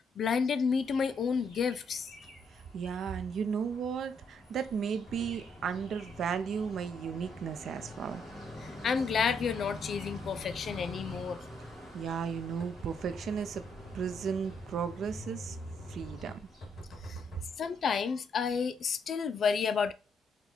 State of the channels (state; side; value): normal; both; correlation 0.73